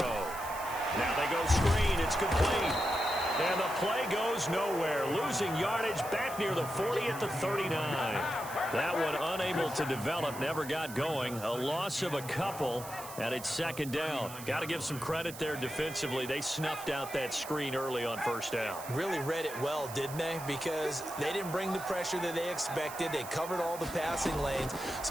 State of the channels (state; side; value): noise; right; hiss, 13 dB below the sound